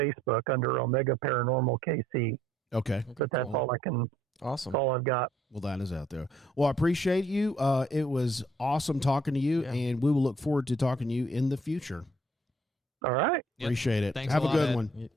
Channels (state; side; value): normal; both; correlation 0.65